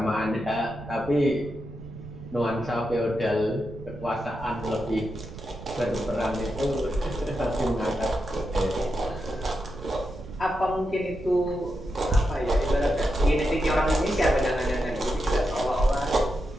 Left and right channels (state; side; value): noise; right; rumble, 14 dB below the sound